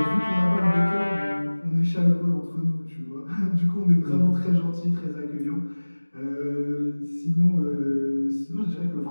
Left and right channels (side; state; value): both; inverted; correlation -1.00